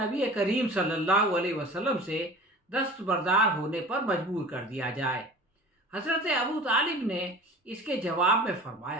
کریم صلی اللہ علیہ وسلم سے دستبردار ہونے پر مجبور کر دیا جائے۔ حضرت ابو طالب نے اس کے جواب میں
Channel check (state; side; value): normal; both; correlation 0.40